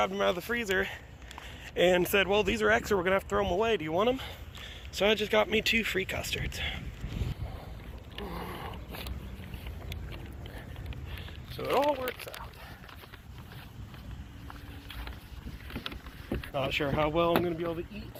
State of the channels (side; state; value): both; identical; correlation 1.00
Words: them out of the freezer and said, well, these are extra, we're gonna have to throw them away. Do you want them? So I just got me 2 free custards. So it all works out. Not sure how well I'm going to be able to eat